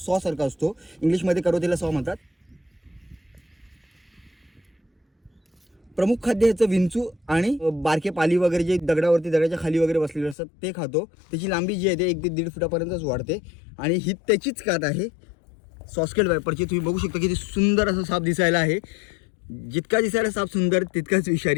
सारखा असतो. इंग्लिशमध्ये करवतीला सॉ म्हणतात. प्रमुख खाद्य ह्याचं विंचू आणि बारके पाली वगैरे जे दगडाच्या खाली वगैरे बसलेले असतात ते खातो. त्याची लांबी जी आहे ते 1 ते 1.5 फुटापर्यंतच वाढते आणि ही त्याचीच कात आहे सॉ स्केल्ड वायपरची. तुम्ही बघू शकता किती सुंदर असा साप दिसायला आहे. जितका दिसायला साप सुंदर तितकाच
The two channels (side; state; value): right; drops out; at 10.4 s